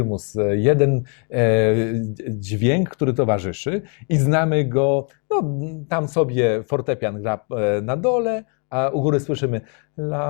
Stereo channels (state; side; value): quieter; right; 38.5 dB